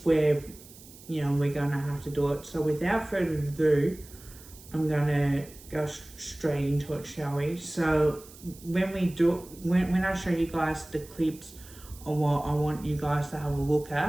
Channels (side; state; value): right; noise; hiss, 20 dB below the sound